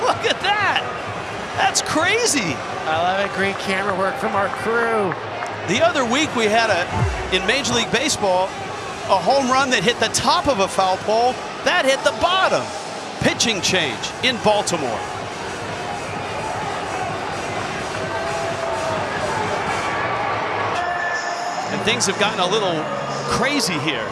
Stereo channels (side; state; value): both; identical; correlation 1.00